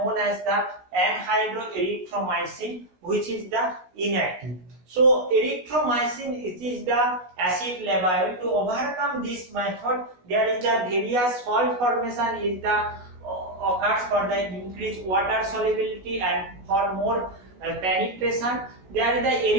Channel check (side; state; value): left; late; 16 ms